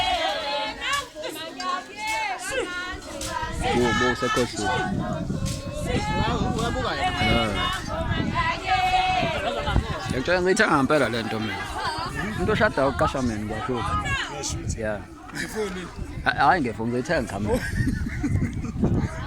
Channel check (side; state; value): both; identical; correlation 1.00